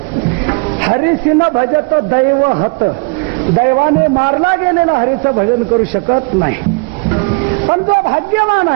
हरिसिन भजत दैव हत. दैवाने मारला गेलेला हरीचं भजन करू शकत नाही. पण जो भाग्यवान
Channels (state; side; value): quieter; left; 31.5 dB